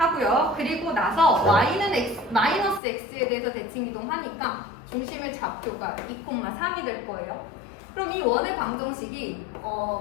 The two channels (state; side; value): drops out; right; at 2.8 s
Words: 그리고 나서 Y는 마이너스 X에 대해서 대칭이동하니까 중심의 좌표가 2, 3이 될 거예요. 그럼 이 원의 방정식이